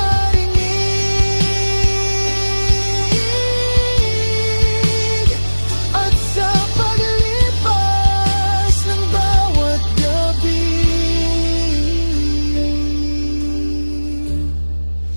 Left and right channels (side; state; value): both; inverted; correlation -1.00